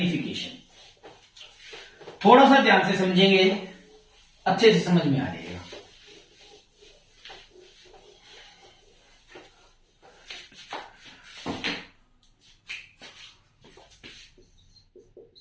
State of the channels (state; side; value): identical; both; correlation 1.00